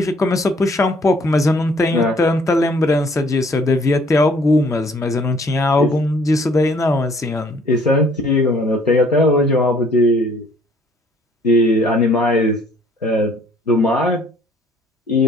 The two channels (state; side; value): normal; both; correlation 0.59